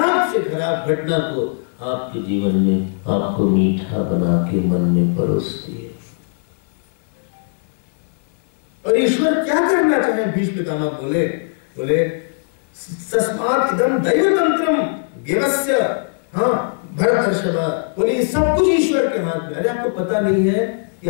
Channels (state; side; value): silent; right; 58 dB below the other